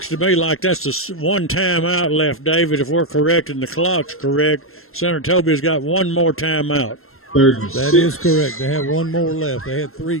to me like that's the one timeout left, David, if we're correct and the clock's correct. Senatobia's got one more timeout. That is correct. They have one more left. They had 3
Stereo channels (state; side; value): late; right; 0.62 ms